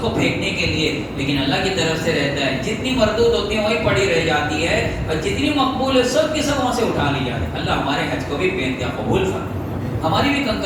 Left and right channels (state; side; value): identical; both; correlation 1.00